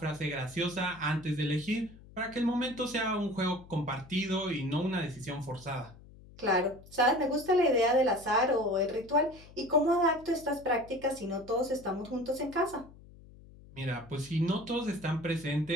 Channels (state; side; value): noise; left; hum, 21 dB below the sound